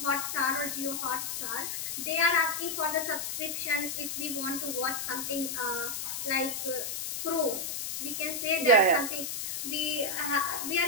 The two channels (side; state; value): left; noise; hiss, 4 dB below the sound